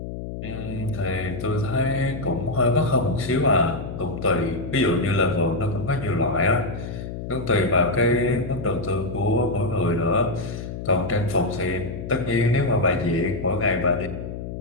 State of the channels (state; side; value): noise; left; hum, 8 dB below the sound